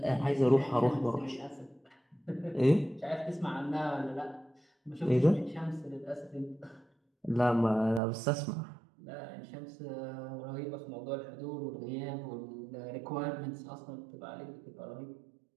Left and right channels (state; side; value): drops out; left; at 8.0 s